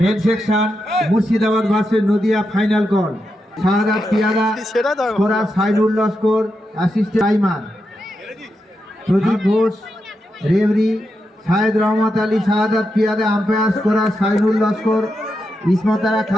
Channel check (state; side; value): normal; both; correlation 0.86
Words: Men section Murshidabad versus Nadia final call. Shahadat Piyada, scorer Sainul Laskar, assistant timer Pradip Ghosh, referee Shahed Rahmat Ali Shahadat Piyada, umpire scorer Sainul Laskar, Ismatara